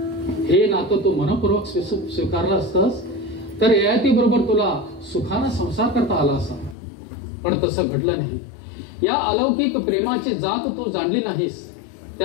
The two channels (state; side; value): drops out; right; at 6.8 s